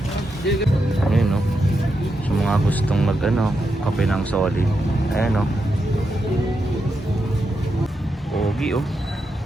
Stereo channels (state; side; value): normal; both; correlation 0.85